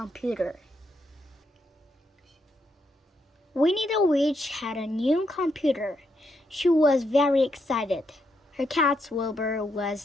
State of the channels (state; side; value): normal; both; correlation 0.79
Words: Winnie the Witch had a new computer. She was very excited. Her cat Wilbur